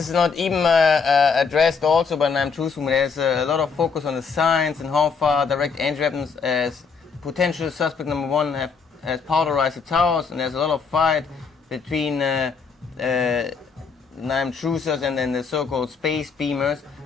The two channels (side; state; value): right; quieter; 5.4 dB